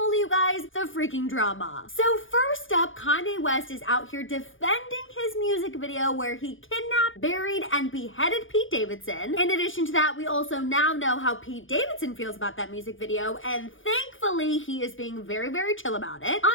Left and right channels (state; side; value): late; right; 0.58 ms